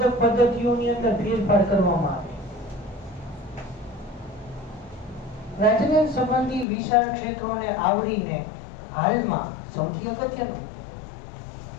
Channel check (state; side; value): drops out; right; at 6.7 s